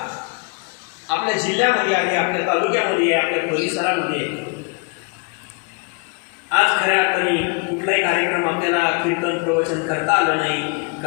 आपल्या जिल्ह्यामध्ये आहे, आपल्या तालुक्यामध्ये आहे, आपल्या परिसरामध्ये आहे. आज खऱ्या अर्थाने कुठलाही कार्यक्रम आपल्याला कीर्तन प्रवचन करता आलं नाही,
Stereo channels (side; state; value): right; quieter; 34.2 dB